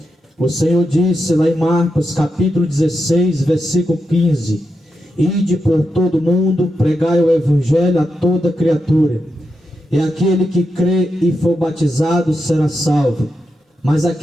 O Senhor disse lá em Marcos capítulo 16, versículo 15: Ide por todo o mundo, pregai o evangelho a toda criatura. E aquele que crê e for batizado será salvo, mas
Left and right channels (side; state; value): both; normal; correlation 0.87